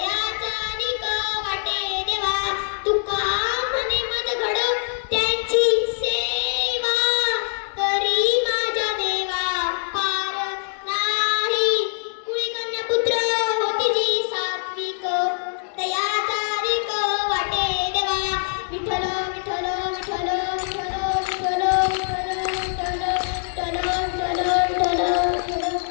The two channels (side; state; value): right; silent; digital silence